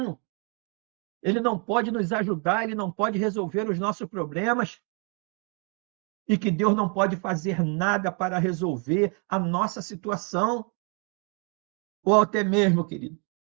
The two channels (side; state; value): left; quieter; 36.8 dB